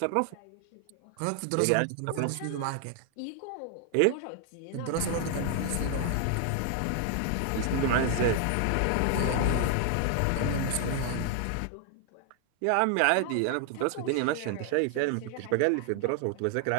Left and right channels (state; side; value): different; both; correlation 0.00